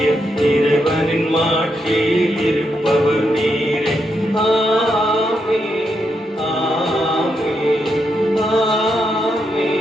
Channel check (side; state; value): both; normal; correlation 0.81